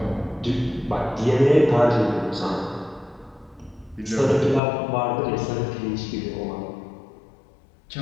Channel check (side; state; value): right; drops out; at 4.6 s